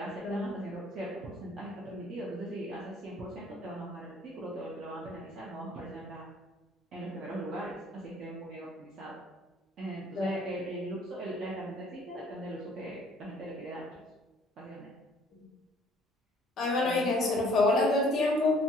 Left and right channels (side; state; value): both; normal; correlation 0.58